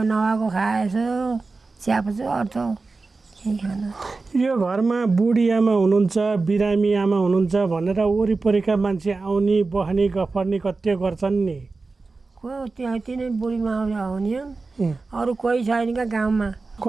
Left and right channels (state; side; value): quieter; left; 3.9 dB